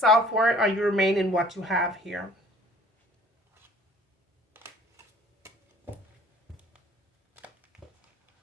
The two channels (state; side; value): normal; both; correlation 0.53